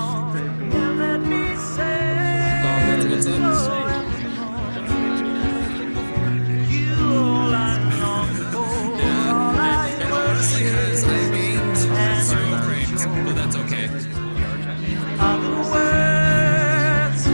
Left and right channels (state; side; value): inverted; both; correlation -1.00